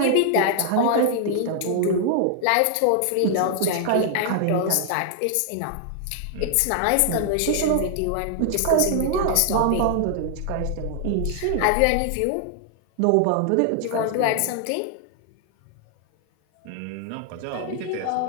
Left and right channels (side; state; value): both; different; correlation 0.00